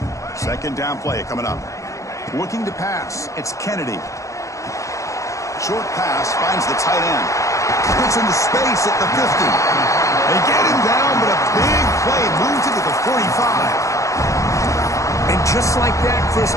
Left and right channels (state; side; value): late; right; 0.15 ms